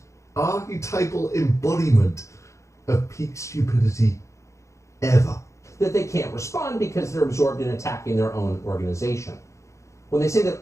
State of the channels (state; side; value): late; right; 0.14 ms